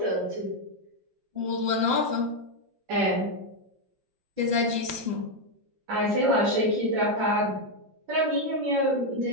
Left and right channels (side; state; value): left; late; 5.7 ms